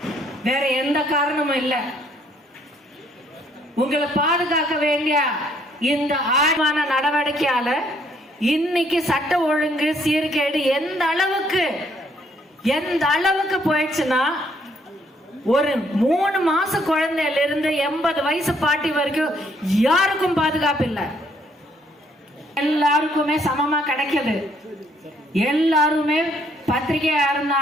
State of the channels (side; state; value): both; normal; correlation 0.67